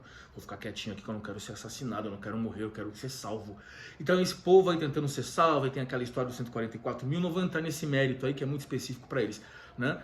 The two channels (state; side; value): identical; both; correlation 1.00